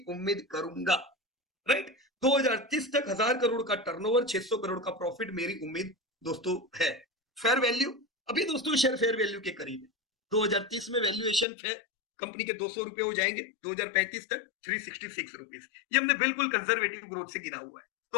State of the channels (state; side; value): drops out; right; at 11.5 s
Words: उम्मीद करूंगा, राइट। 2030 तक 1000 करोड़ का टर्नओवर, 600 करोड़ का प्रॉफिट मेरी उम्मीद दोस्तों है। फेयर वैल्यू अभी दोस्तों शेयर फेयर वैल्यू के करीब है। 2030 में वैल्यूएशन फेयर कंपनी के 200 रुपए हो जाएंगे, 2035 तक 366 रुपीज। ये हमने बिल्कुल कंजर्वेटिव ग्रोथ से गिरा हुआ है।